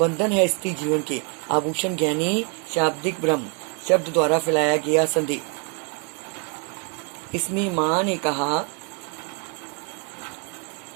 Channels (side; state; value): left; quieter; 37.4 dB